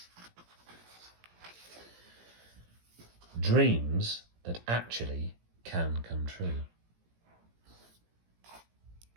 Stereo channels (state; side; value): late; left; 17 ms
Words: Dreams that actually can come true.